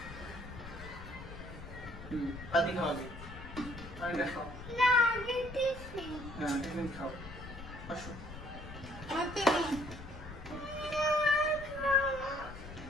পানি খাওয়া যায়, পানিটা খাও। হ্যাঁ, টিফিন খাও, আসো।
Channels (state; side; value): noise; left; rumble, 12 dB below the sound